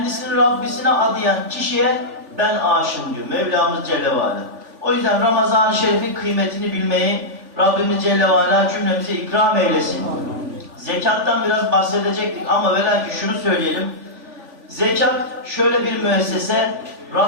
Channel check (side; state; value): left; late; 3.4 ms